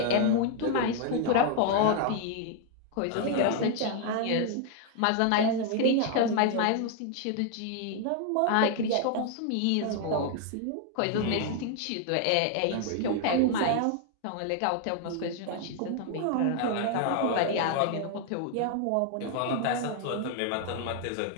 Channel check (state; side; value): different; both; correlation 0.00